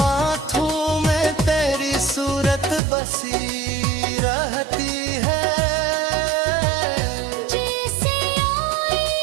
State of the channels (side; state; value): left; drops out; at 2.8 s